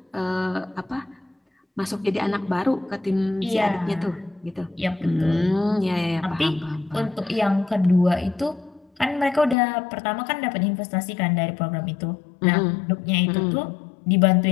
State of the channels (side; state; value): right; drops out; at 9.6 s